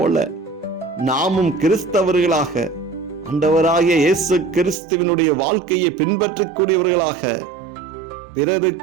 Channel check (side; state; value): left; drops out; at 4.8 s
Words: நாமும் கிறிஸ்தவர்களாக ஆண்டவராகிய இயேசு கிறிஸ்துவினுடைய வாழ்க்கையை பின்பற்றக்கூடியவர்களாக